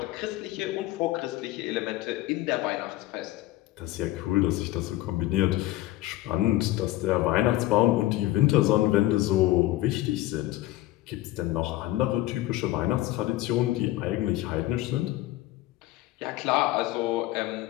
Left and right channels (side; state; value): right; quieter; 16.4 dB